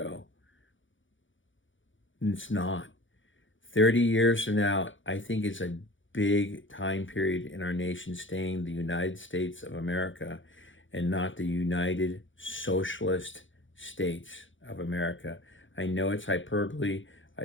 It's not. 30 years from now, I think it's a big time period in our nation staying the United States of America and not the United Socialist States of America. I know it's hyperbole.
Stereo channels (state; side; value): late; right; 0.56 ms